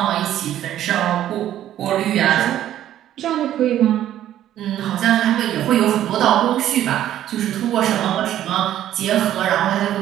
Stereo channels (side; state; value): left; quieter; 12.0 dB